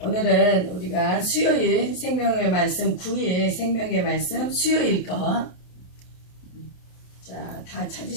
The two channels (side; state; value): right; late; 28 ms